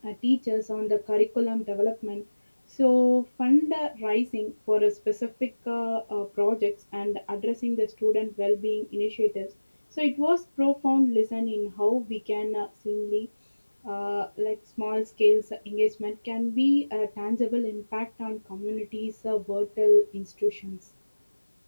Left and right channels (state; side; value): inverted; both; correlation -1.00